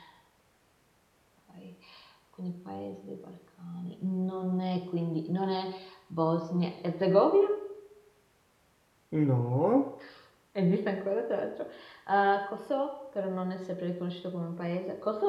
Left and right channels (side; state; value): both; identical; correlation 1.00